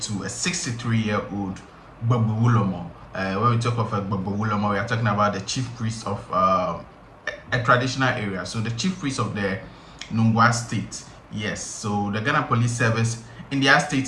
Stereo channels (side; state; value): both; identical; correlation 1.00